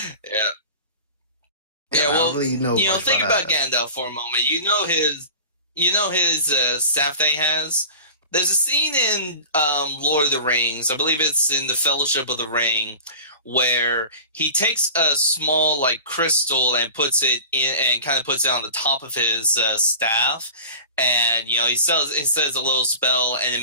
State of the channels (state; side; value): inverted; both; correlation -0.37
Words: Yeah. Well, I don't really know think about Gandalf for a moment. His staff that he has. There's a scene in Lord of the Rings, I believe it's in the Fellowship of the Ring, where he takes a small like crystal and puts it in, and kind of puts it on the top of his staff, and he says a little spell, and it